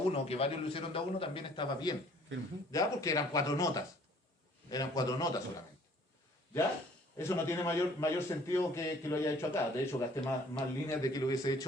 que varios lo hicieron de a uno, también estaba bien. Firme. ¿Ya? Porque eran 4 notas. Eran 4 notas solamente. ¿Ya? Eso no tiene mayor sentido que lo haya hecho acá. De hecho, gasté más líneas de que lo hubiese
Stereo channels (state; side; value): normal; both; correlation 0.56